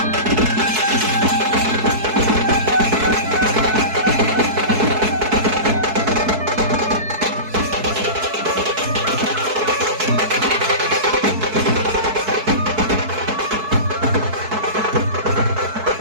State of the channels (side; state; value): left; late; 4.6 ms